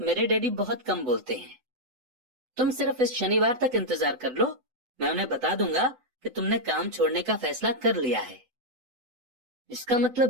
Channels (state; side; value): late; left; 8.0 ms